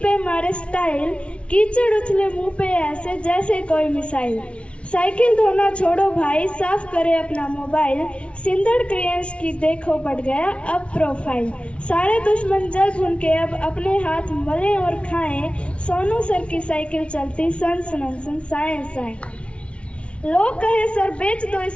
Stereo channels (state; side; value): late; right; 0.061 ms